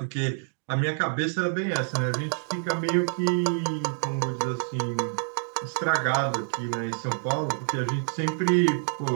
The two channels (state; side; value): silent; left; digital silence